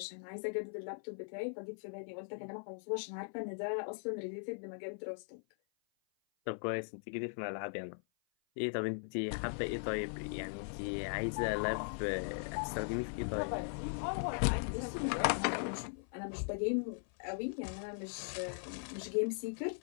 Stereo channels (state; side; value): silent; right; 52 dB below the other